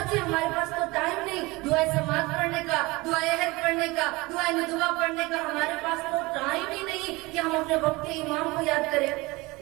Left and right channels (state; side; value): quieter; left; 22.8 dB